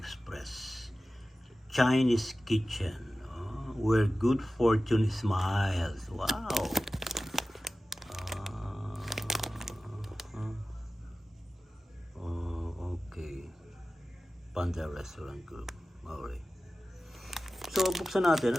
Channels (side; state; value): both; normal; correlation 0.95